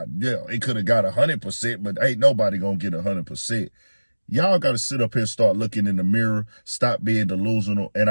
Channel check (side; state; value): both; inverted; correlation -1.00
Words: yeah, it could have got 100%, but ain't nobody gonna get 100%. Y'all got to sit up here and start looking in the mirror, stop being delusional. And